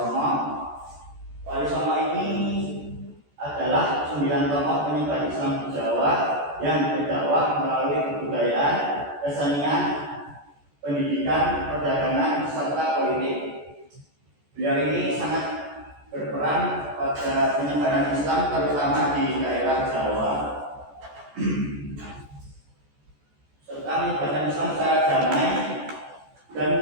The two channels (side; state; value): left; late; 14 ms